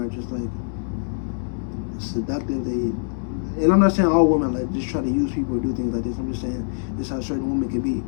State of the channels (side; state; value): right; silent; 63 dB below the other